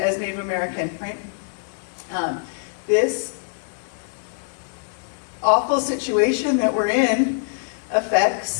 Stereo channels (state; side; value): silent; right; digital silence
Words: Native American, right? This awful situation that we're in